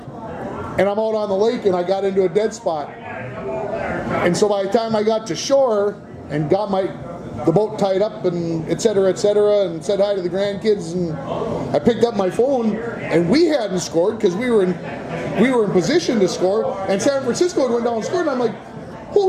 and I'm out on the lake, and I got into a dead spot. And so by the time I got to shore and got the boat tied up and et cetera, and said hi to the grandkids, and I picked up my phone, and we hadn't scored because we were in position to score, and San Francisco had went down and scored, and I'm like,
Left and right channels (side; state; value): both; identical; correlation 1.00